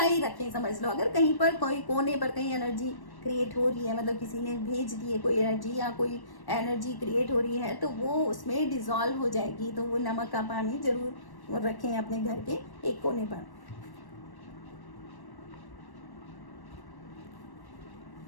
ही रखें, समझ लो। अगर कहीं पर कोई कोने पर कहीं एनर्जी क्रिएट हो रही है, मतलब किसी ने भेज दी है कोई एनर्जी या कोई एनर्जी क्रिएट हो रही है, तो वो उसमें डिजॉल्व हो जाएगी। तो वो नमक का पानी जरूर रखें अपने घर के एक कोने पर।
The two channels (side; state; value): right; late; 1.1 ms